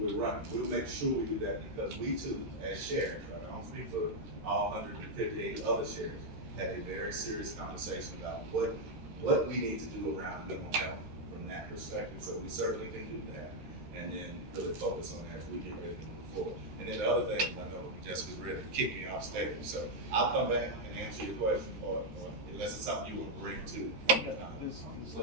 running. We'll make sure we do that because we too, as sheriffs, right? I don't speak for all 158 other sheriffs, had a very serious conversation about what we need to do around mental health from that perspective. So we certainly can do that. And then really focus on that as we get ready to move forward. And then the other thing, I know Jessica's ready to kick me off stage, so I'll come back and answer your question, or unless it's something you will bring to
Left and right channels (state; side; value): late; left; 13 ms